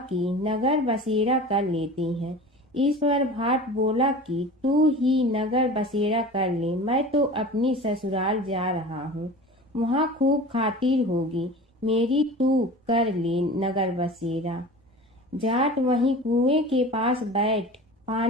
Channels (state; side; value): normal; both; correlation 0.36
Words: कि नगर बसेरा कर लेते हैं। इस पर भाट बोला कि तू ही नगर बसेरा कर ले, मैं तो अपनी ससुराल जा रहा हूँ, वहाँ खूब खातिर होगी मेरी, तू कर ले नगर बसेरा। जाट वहीं कुएं के पास बैठ